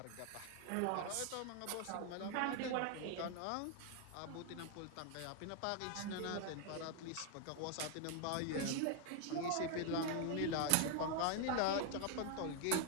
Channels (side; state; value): both; different; correlation 0.00